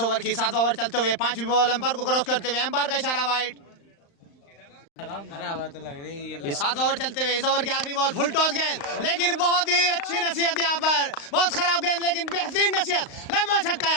ओवर की। 7वां ओवर चलते हुए 5वीं बॉल एम्पायर को क्रॉस करते हुए एम्पायर का इशारा वाइड। ये 7वां ओवर चलते हुए इस ओवर की आखिरी बॉल फुल टॉस गेंद, लेकिन बहुत ही अच्छी नसीहत यहाँ पर, बहुत खराब गेंद लेकिन बेहतरीन नसीहत। लंबा छक्का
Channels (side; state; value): right; late; 35 ms